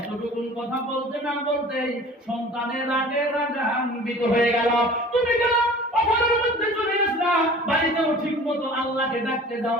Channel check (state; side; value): normal; both; correlation 0.43